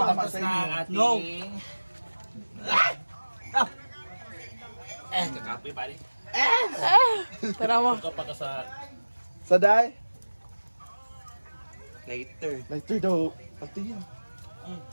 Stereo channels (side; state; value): both; inverted; correlation -1.00